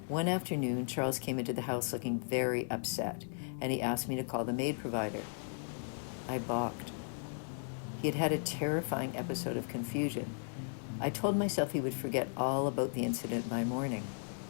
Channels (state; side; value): silent; right; digital silence